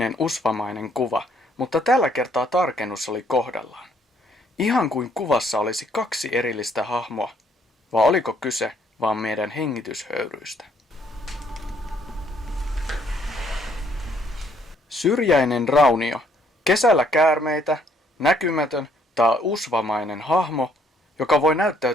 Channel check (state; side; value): normal; both; correlation 0.66